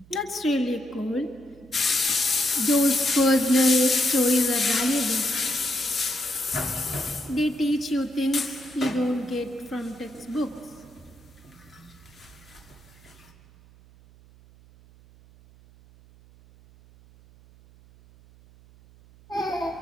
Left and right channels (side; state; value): right; noise; hum, 25 dB below the sound